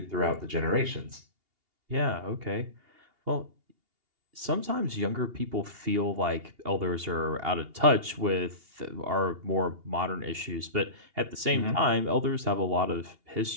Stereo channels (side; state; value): left; late; 2.8 ms